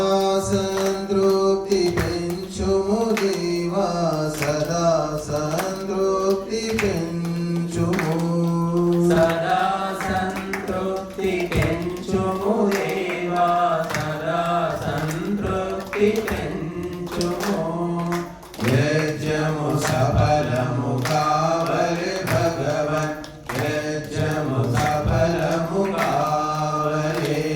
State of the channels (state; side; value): identical; both; correlation 1.00